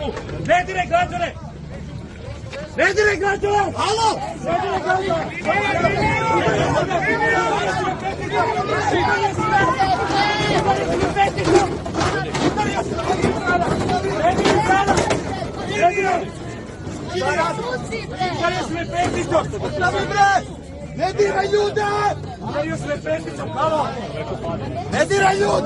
Ne diraj građane. Ne diraj građane. Halo. Ne diraj građane. Ne diraj ljude! Ne diraj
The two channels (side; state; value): both; identical; correlation 1.00